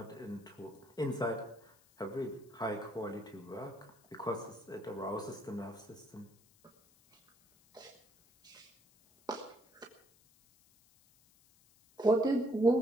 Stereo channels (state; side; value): noise; left; hiss, 29 dB below the sound